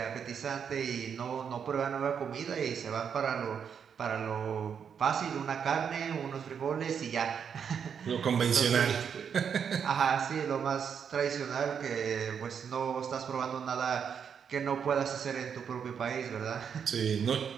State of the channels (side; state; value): left; quieter; 7.3 dB